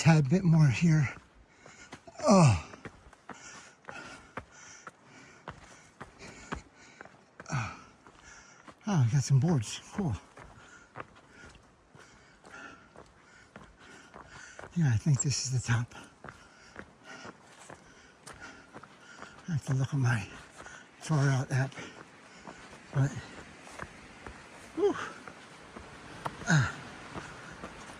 bit more here. Oh. Oh, I got some boards. Cool. Yeah, I think this is the top. I have to look at my far out app. But, whew.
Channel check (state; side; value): identical; both; correlation 1.00